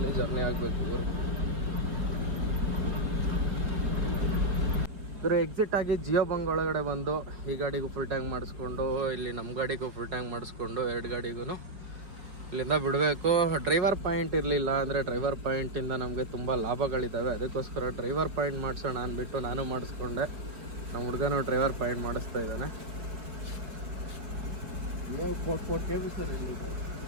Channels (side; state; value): left; late; 4.9 ms